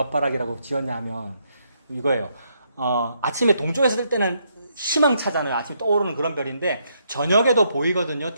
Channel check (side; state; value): both; inverted; correlation -0.75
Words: 지었냐 하면 이거예요. 아침에 동쪽에서 뜰 때는 희망차잖아요. 아침에 떠오르는 그런 별인데 저녁에도 보이거든요.